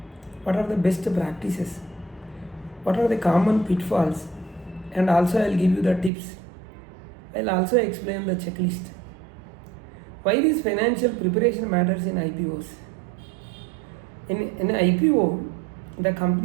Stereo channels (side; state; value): left; drops out; at 6.1 s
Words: What are the best practices? What are the common pitfalls? And also I will give you the tips. I will also explain the checklist. Why this financial preparation matters in IPOs? In IPO, the